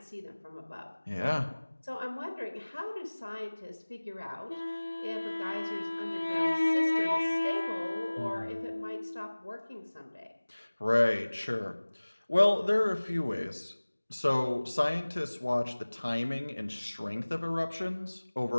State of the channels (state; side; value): inverted; both; correlation -1.00